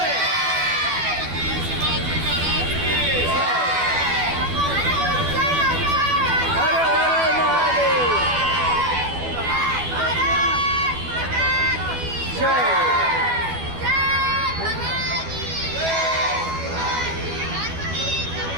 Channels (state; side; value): late; left; 12 ms